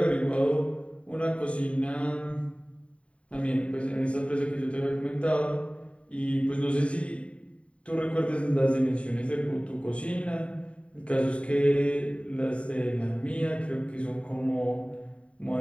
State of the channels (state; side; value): late; right; 0.063 ms